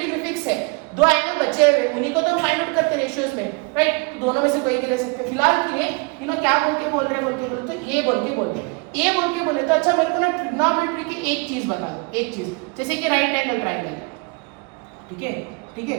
फिक्स है, दो एंगल बचे हुए उन्हीं को तो फाइंड आउट करते रेशियोज में, राइट. तो दोनों में से कोई भी ले सकते हैं. फिलहाल के लिए क्या बोल के बोल रहे हैं, तो a बोल के बोलते हैं. a बोल के बोले तो अच्छा मेरे को ना ट्रिग्नोमेट्री की एक चीज बता दो, एक चीज जैसे कि राइट एंगल ट्रायंगल. ठीक है, ठीक है,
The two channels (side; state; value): left; quieter; 30.4 dB